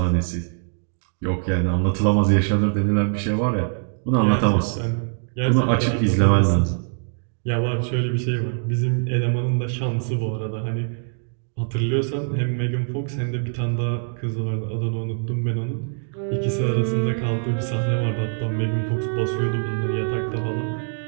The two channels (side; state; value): left; silent; 63 dB below the other